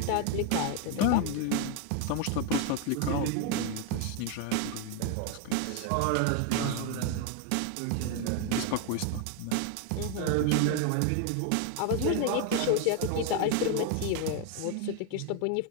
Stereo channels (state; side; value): different; both; correlation 0.01